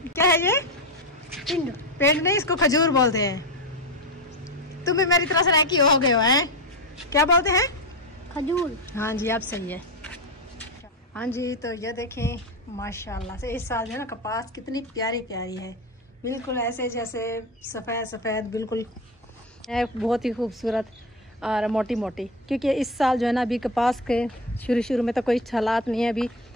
क्या है ये? पेंट। पेंट नहीं इसको खजूर बोलते हैं। तुम भी मेरी तरह से रैकी हो गए हो हैं? क्या बोलते हैं? खजूर। हाँ जी आप सही है। हाँ जी तो ये देखें माशाल्लाह से इस साल जो है ना कपास कितनी प्यारी प्यारी है, बिल्कुल ऐसे जैसे सफ़ेद सफ़ेद बिल्कुल है, बहुत ही खूबसूरत और मोटी मोटी। क्योंकि इस साल जो है ना अभी कपास के शुरू में तो कोई हालात नहीं है। अभी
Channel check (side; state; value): both; normal; correlation 0.18